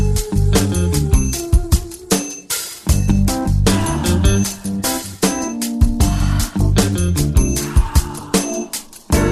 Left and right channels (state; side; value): identical; both; correlation 1.00